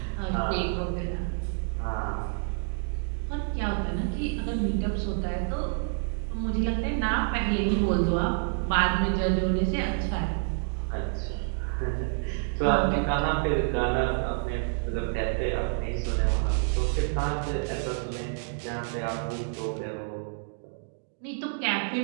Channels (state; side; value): silent; left; digital silence